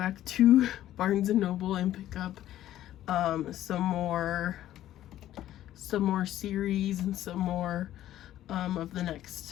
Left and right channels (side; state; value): right; quieter; 13.0 dB